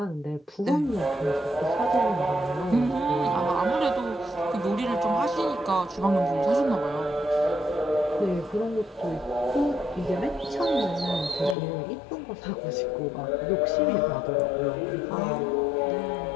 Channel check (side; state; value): right; drops out; at 11.6 s